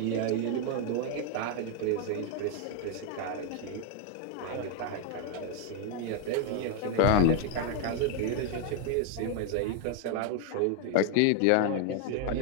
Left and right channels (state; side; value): different; both; correlation 0.00